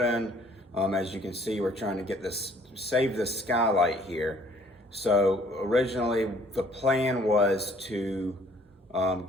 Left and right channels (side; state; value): both; normal; correlation 0.59